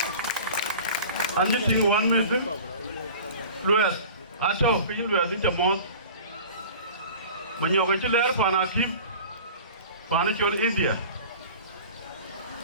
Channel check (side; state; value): both; inverted; correlation -0.40